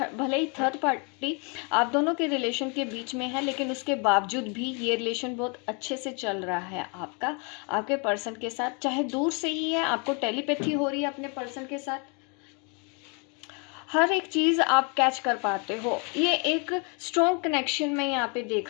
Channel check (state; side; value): quieter; right; 34.5 dB